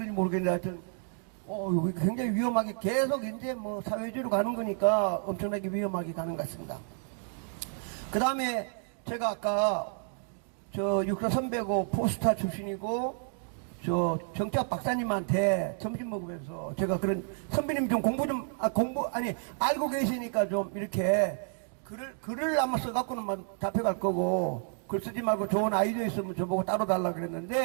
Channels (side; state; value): left; silent; 57 dB below the other